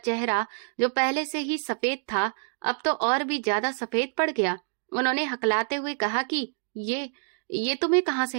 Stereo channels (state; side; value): silent; left; 60 dB below the other